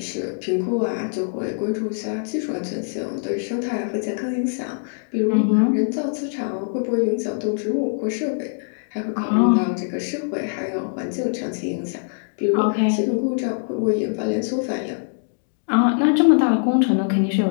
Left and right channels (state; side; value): silent; right; digital silence